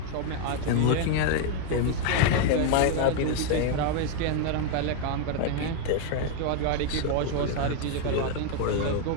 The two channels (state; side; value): different; both; correlation 0.01